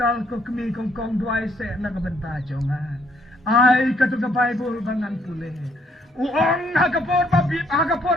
ko kemi kong duai se na kabenta jonga ay katu ka bible bangan pule uong hagapor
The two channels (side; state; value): both; normal; correlation 0.68